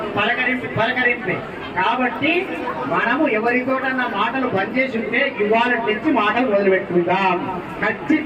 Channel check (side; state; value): both; identical; correlation 1.00